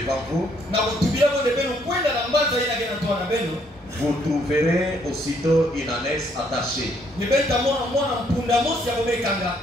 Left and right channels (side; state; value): both; normal; correlation 0.68